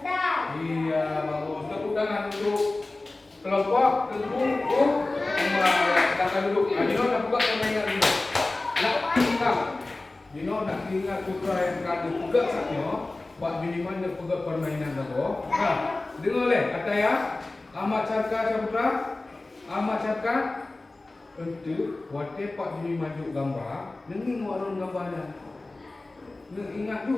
Iya, bagus. Tepuk tangan untuk kelompok tengkung silakan duduk. Dino nak buka permainan dulu. Dino nak ingat putra yang kado juga saknya. Buat minimal dia pegang permainan dulu. Dengar leh kata ya. Amat Carka putra. Amat Carka untuk buat pak bini maju gambar. Nengi warun gambarnya. Ingat tu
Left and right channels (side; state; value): right; quieter; 3.1 dB